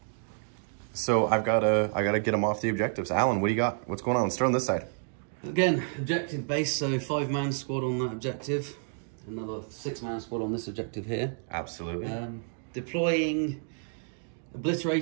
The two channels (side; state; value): left; silent; 58 dB below the other